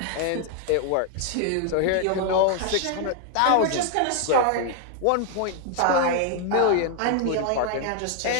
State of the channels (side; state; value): both; different; correlation 0.00